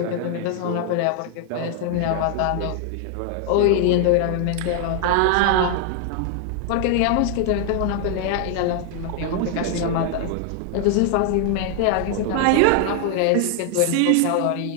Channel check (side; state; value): both; different; correlation 0.00